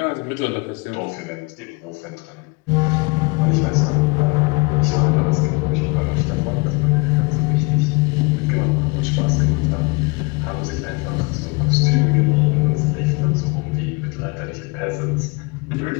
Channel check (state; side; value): quieter; right; 28.4 dB